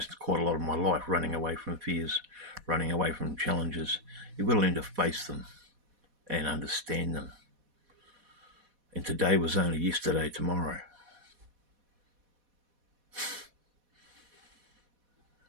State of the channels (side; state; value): left; late; 4.1 ms